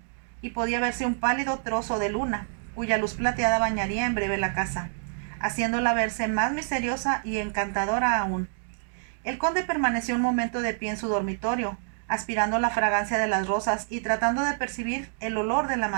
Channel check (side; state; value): left; silent; digital silence